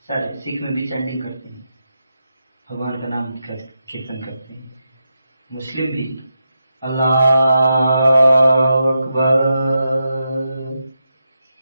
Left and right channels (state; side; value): inverted; both; correlation -0.86